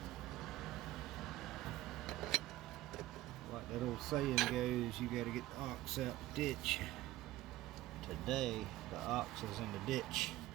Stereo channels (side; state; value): left; quieter; 16.2 dB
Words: Like that old saying goes, you gotta get the ox out the ditch. Today, the ox is in the ditch.